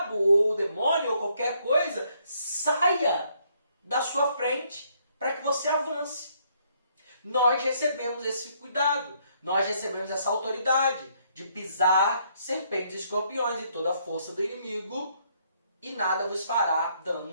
ou o demônio ou qualquer coisa saia da sua frente, para que você avance. Nós recebemos esse cuidado, nós recebemos essa autoridade. de pisar serpentes e escorpiões e toda a força do inimigo, e nada vos fará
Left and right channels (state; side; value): inverted; both; correlation -0.70